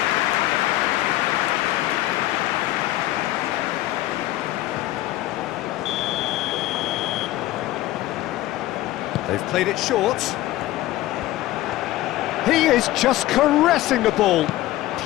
They've played it short. He is just caressing the ball.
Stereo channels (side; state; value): right; quieter; 15.9 dB